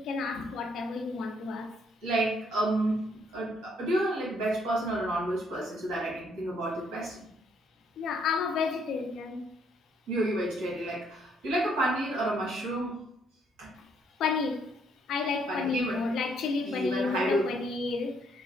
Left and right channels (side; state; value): both; normal; correlation 0.69